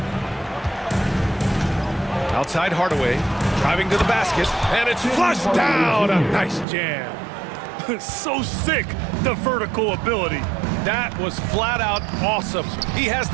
Outside Hardaway, driving to the basket, and it's flushed down. A nice jam. So sick, the vertical ability. That was flat out awesome. He has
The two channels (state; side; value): drops out; left; at 6.7 s